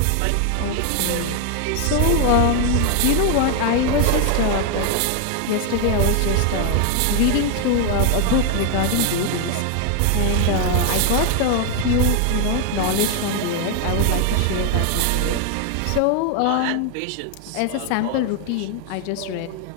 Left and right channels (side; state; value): both; different; correlation 0.01